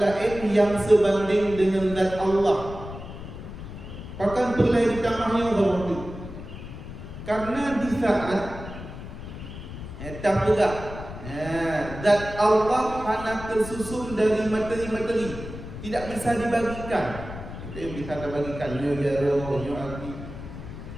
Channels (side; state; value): left; noise; rumble, 11 dB below the sound